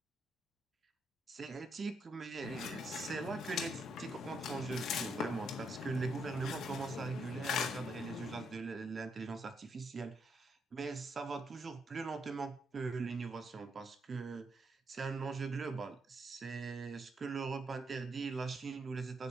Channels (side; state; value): both; normal; correlation 0.78